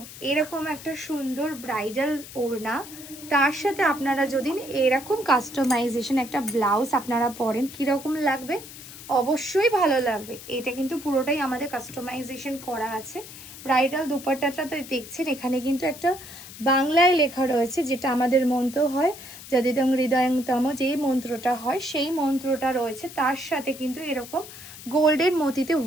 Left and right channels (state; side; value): noise; left; hiss, 15 dB below the sound